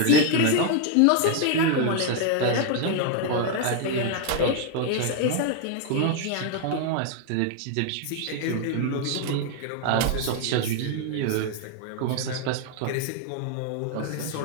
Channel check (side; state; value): both; different; correlation 0.00